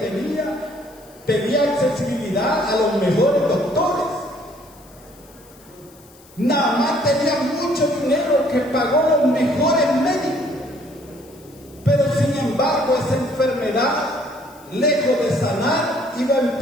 tenía accesibilidad a los mejores doctores. Naamán tenía mucho dinero que pagó los mejores médicos. Pero sin embargo, esa enfermedad, lejos de sanar, iba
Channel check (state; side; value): noise; left; hiss, 26 dB below the sound